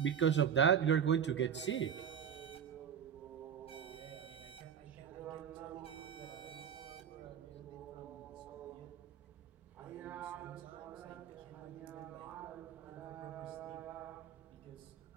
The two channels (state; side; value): quieter; left; 8.1 dB